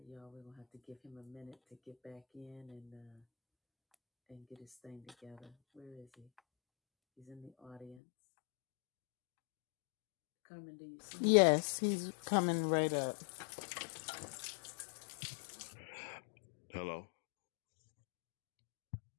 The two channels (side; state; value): right; drops out; at 8.0 s